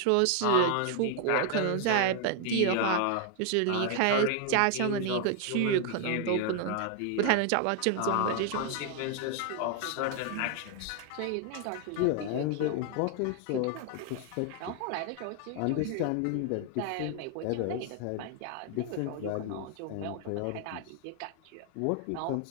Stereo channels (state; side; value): different; both; correlation 0.00